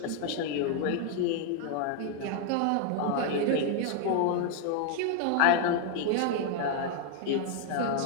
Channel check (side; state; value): both; different; correlation 0.00